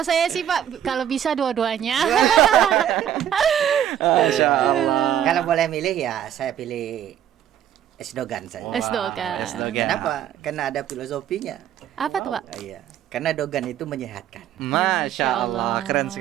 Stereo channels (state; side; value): quieter; left; 10.4 dB